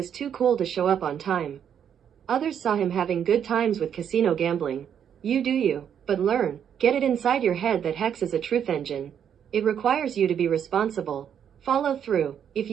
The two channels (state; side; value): quieter; left; 8.6 dB